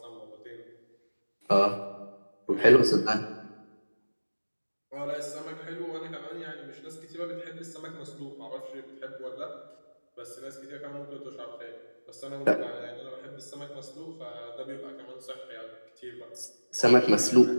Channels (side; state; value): both; inverted; correlation -1.00